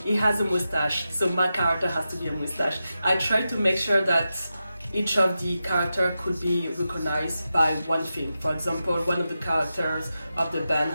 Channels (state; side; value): inverted; both; correlation -0.90